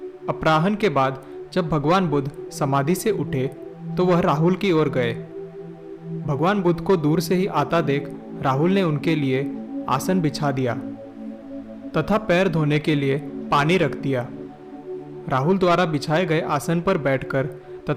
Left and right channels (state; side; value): identical; both; correlation 1.00